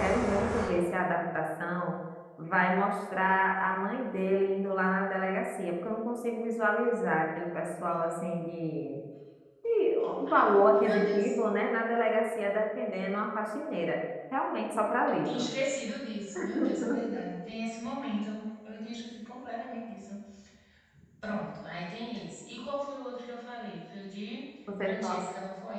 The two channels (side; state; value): both; identical; correlation 1.00